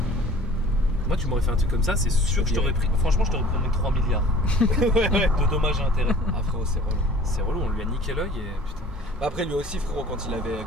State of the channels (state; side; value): normal; both; correlation 0.47